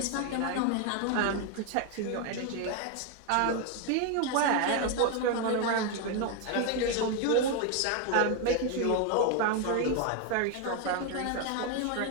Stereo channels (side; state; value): both; different; correlation 0.01